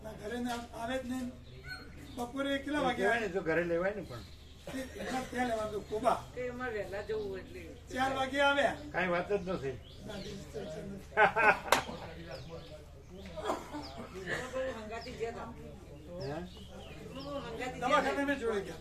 ના, ઘરે આવે જ નહીં. બપોરે કેટલા વાગે કહેવાય ને તો ઘરે લેવાય ને, પણ ત્યાં લેવાનું કોબા કે એમાં વહેલા જવું એટલે 4 વાગે આવ્યા. કાંઈ વાત જ નથી. ના, distraction નથી. હંગાતી ગયા હતા. હે? હંગાતી દવાખાને મેં જોડે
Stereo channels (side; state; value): both; identical; correlation 1.00